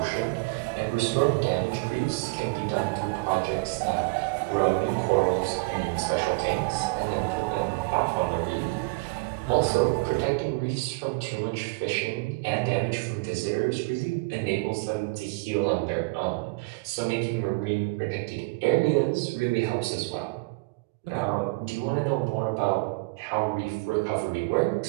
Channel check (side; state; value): left; quieter; 28.0 dB